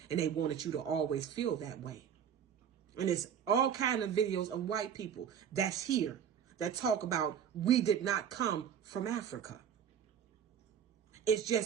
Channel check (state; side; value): quieter; left; 8.4 dB